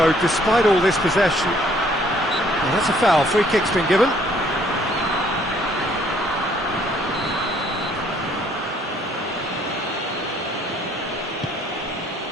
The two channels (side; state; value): both; normal; correlation 0.63